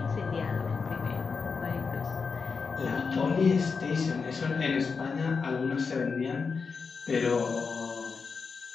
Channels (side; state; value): right; quieter; 5.1 dB